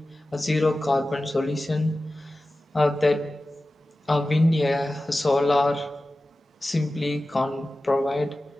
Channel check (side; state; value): both; normal; correlation 0.95